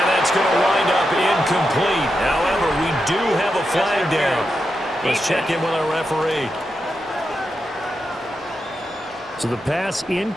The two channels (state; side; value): normal; both; correlation 0.87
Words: that's going to wind up incomplete. However, we do have a flag down. Let's check in with our referee. So the pass